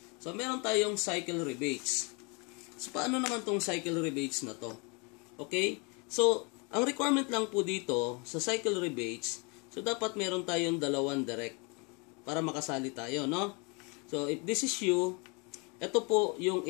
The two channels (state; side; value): quieter; right; 31.5 dB